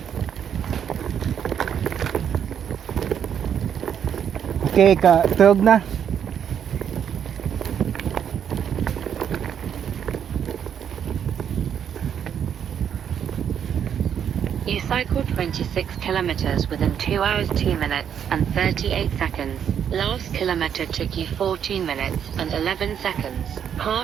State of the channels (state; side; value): quieter; left; 8.5 dB